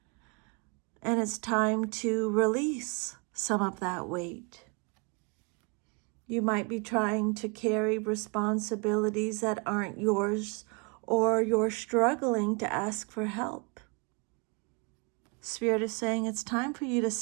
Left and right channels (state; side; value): quieter; left; 32.7 dB